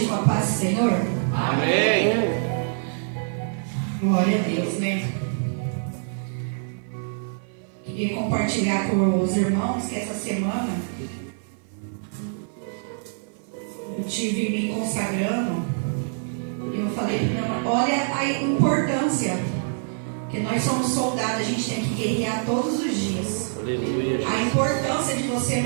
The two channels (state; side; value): silent; left; 56 dB below the other